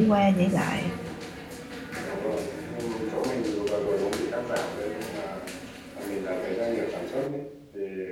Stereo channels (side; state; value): both; identical; correlation 1.00